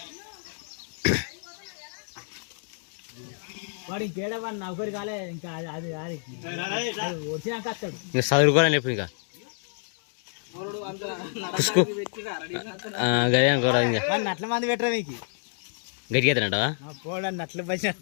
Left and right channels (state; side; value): silent; right; digital silence